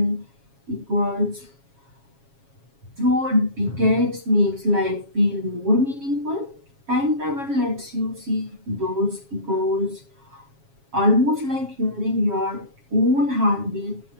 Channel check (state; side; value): late; left; 7.3 ms